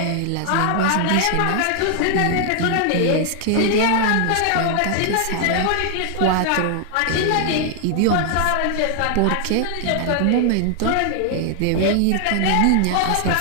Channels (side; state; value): both; different; correlation 0.00